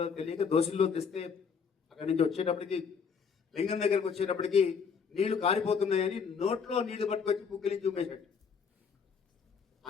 తెలియక దోశల్లో తెస్తే అక్కడి నుంచి వచ్చేటప్పటికి లింగం దగ్గరకు వచ్చేటప్పటికి నీళ్లు కారిపోతున్నాయని నోట్లో నీళ్లు పట్టుకొచ్చి పుక్కిలించి ఉమ్మేశాడు. ఆ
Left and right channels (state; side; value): quieter; right; 6.1 dB